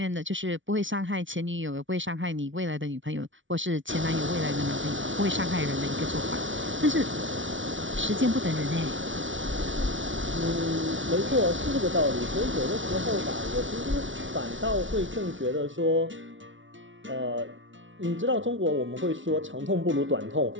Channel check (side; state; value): left; late; 0.56 ms